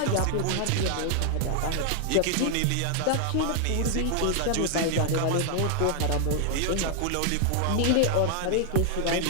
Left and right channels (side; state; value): both; different; correlation 0.00